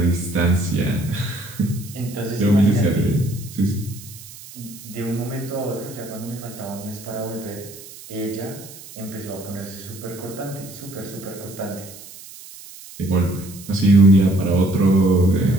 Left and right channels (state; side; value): noise; right; hiss, 17 dB below the sound